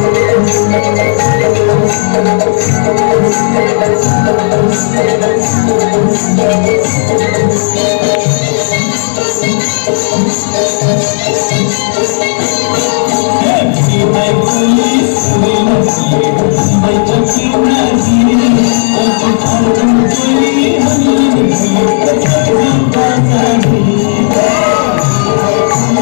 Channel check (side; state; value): right; silent; digital silence